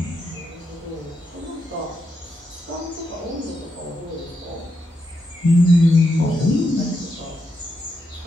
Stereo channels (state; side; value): normal; both; correlation 0.83